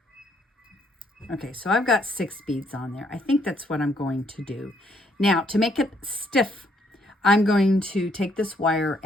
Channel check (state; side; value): normal; both; correlation 0.70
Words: Okay, so I've got 6 beads on there. I think that's what I'm going to do. Now, to make it stiff, I'm going to take this wire